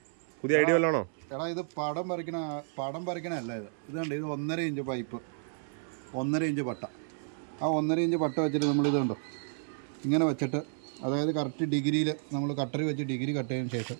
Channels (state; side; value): silent; left; 57 dB below the other